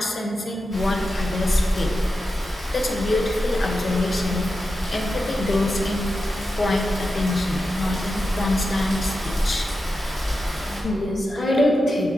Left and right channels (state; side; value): normal; both; correlation 0.90